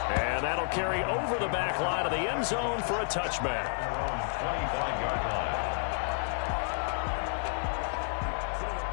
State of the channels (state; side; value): silent; right; digital silence